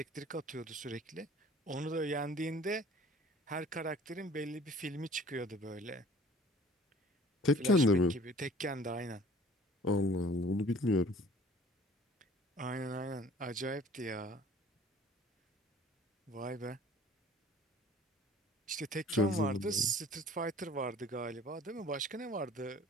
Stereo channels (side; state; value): both; normal; correlation 0.50